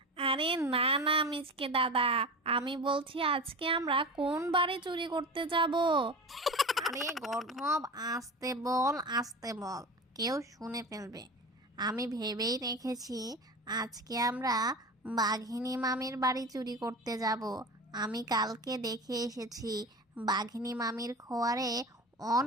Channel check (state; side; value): normal; both; correlation 0.31